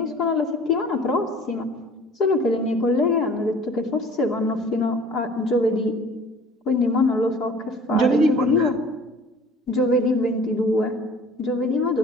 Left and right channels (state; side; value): normal; both; correlation 0.48